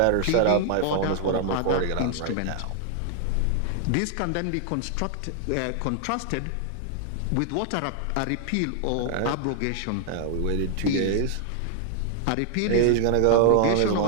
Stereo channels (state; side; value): different; both; correlation 0.00